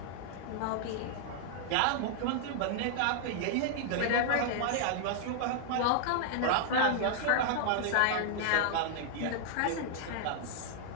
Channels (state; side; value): different; both; correlation -0.01